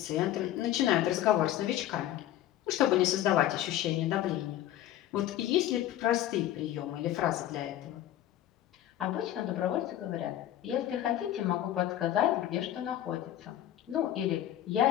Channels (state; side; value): quieter; right; 12.7 dB